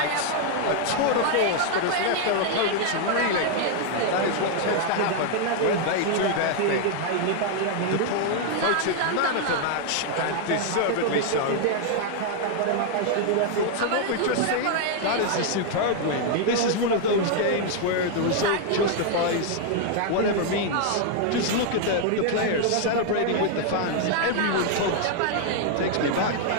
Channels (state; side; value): different; both; correlation 0.00